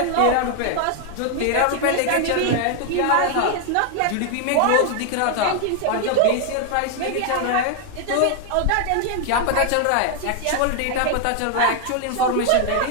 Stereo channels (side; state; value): both; different; correlation 0.00